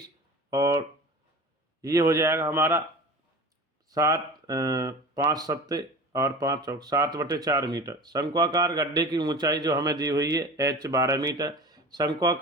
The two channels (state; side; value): normal; both; correlation 0.35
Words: और ये हो जाएगा हमारा 5 सत्ते और 5 चौक 7/4 मीटर। शंक्वाकार गड्ढे की ऊंचाई जो हमें दी हुई है h 12 मीटर।